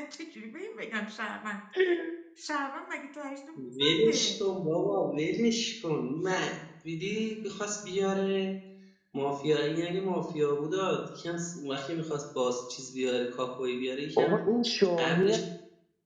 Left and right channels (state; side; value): identical; both; correlation 1.00